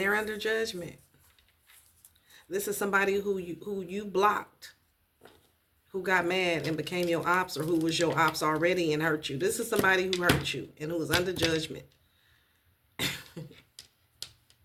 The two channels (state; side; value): identical; both; correlation 1.00